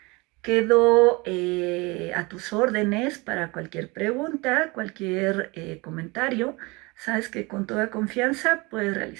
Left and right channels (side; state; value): left; quieter; 25.5 dB